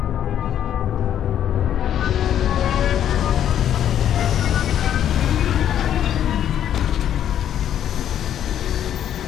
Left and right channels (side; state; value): right; quieter; 10.2 dB